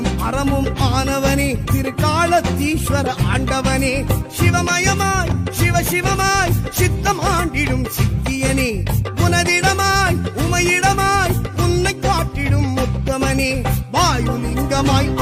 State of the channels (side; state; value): both; identical; correlation 1.00